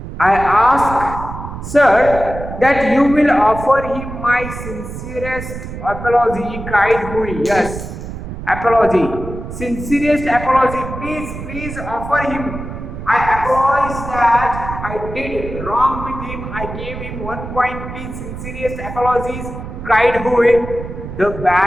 I ask, sir, that you will offer him my sincerest apology, cried Hui. Yes, apology. Sincerest apology. Please offer him. I apologize that I did wrong with him. I gave him 1 point. Please, sincerest apologies, cried Hui. The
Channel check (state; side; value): noise; right; rumble, 9 dB below the sound